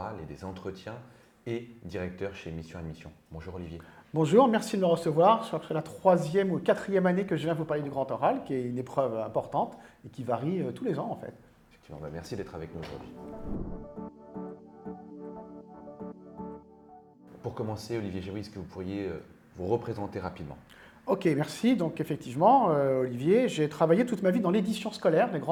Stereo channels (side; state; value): both; identical; correlation 1.00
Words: et des entretiens et directeur chez Mission Admission. Bonjour Olivier. Bonjour, merci de me recevoir. C'est la 3e ou 4e année que je viens vous parler du grand oral, qui est une épreuve importante et qui varie tous les ans en fait. Effectivement, merci d'être avec nous aujourd'hui. Pour commencer, Olivier Jaoui, est-ce que vous pourriez vous représenter rapidement? Ok, merci. Donc effectivement, Olivier, j'ai travaillé toute ma vie dans l'édition scolaire, les